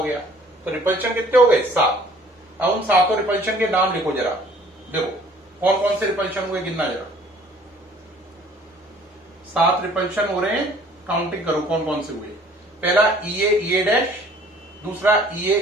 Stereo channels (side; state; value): both; normal; correlation 0.55